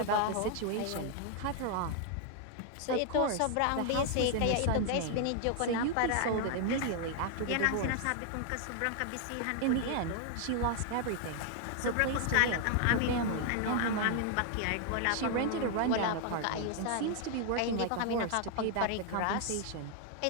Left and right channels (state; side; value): different; both; correlation 0.00